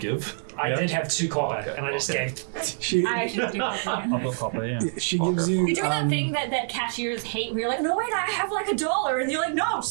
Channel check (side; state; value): left; silent; 61 dB below the other